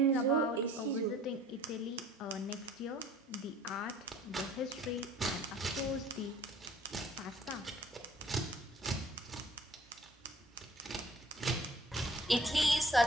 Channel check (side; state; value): both; normal; correlation 0.54